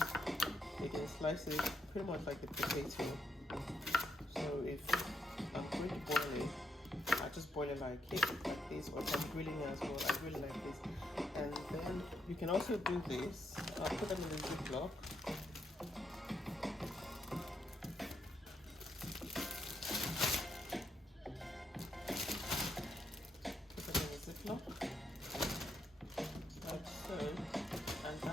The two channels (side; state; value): both; normal; correlation 0.78